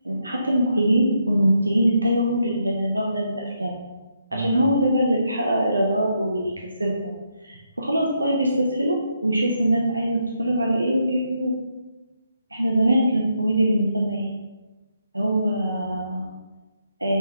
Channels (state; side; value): inverted; both; correlation -0.79